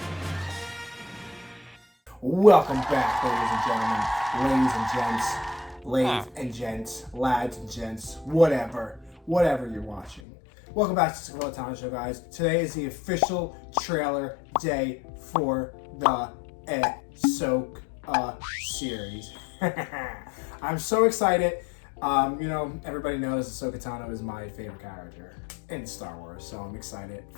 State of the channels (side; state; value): right; drops out; at 10.2 s